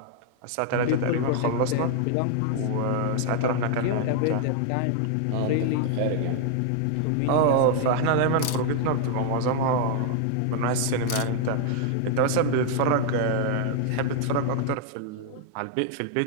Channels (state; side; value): different; both; correlation 0.00